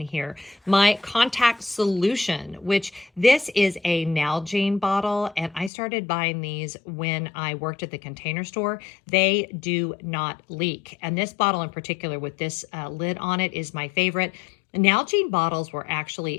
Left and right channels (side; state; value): right; drops out; at 5.7 s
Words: My contact solution, which this is a Nalgene bottle, and I started buying these when I worked at the Container Store. They do not leak. And this bottle in particular with this lid on it is my favorite. Nalgene bottles were